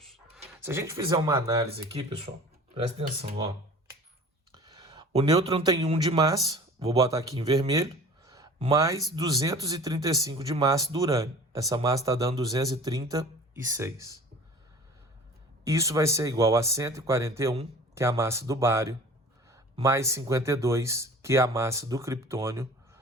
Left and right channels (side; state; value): both; normal; correlation 0.43